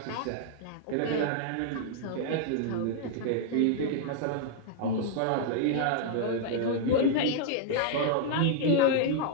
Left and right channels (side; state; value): both; different; correlation -0.01